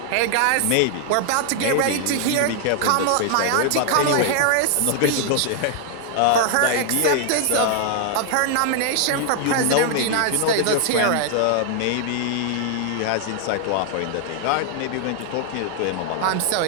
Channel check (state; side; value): different; both; correlation 0.00